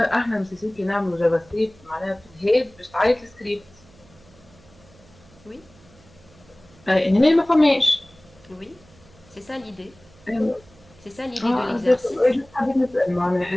مسيسين كي نعملوا جافا سكريبت معناها في الهيد باش تعيط السكريبت. Oui. هنا ما فماش. Oui, c'est ça l'idée. أيوة. C'est ça l'idée de l'exercice.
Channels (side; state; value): right; noise; hum, 27 dB below the sound